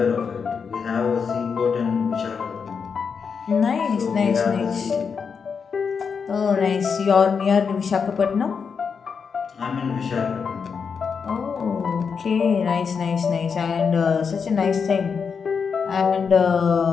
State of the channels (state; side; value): quieter; right; 6.0 dB